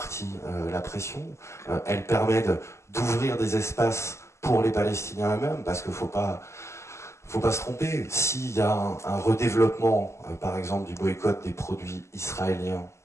la pression, elle permet d'ouvrir des espaces pour les Palestiniens eux-mêmes, parce qu'il faut pas se tromper. S'il y a un redéveloppement, par exemple, du boycott des produits israéliens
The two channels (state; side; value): late; right; 0.13 ms